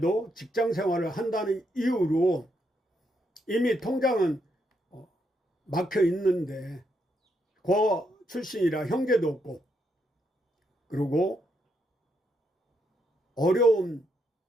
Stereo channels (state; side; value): normal; both; correlation 0.78